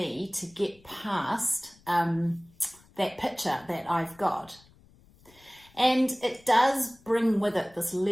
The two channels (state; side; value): noise; left; rumble, 28 dB below the sound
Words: to get past that picture that I've got. And it does bring with it this